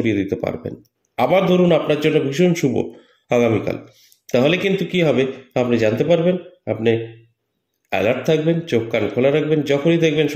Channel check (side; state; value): both; identical; correlation 1.00